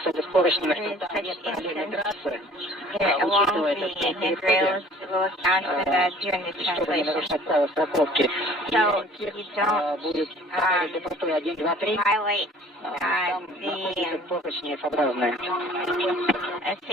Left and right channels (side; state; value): both; normal; correlation 0.51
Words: с поручнями, is что там such нет параллельной instance. трассы. Along Учитывая the это, что handrails will account for that during the чтобы не translation. нарушать правила страховки. So you don't Будет для простой 1, 2, 3. violate Там находятся поручни F-образные.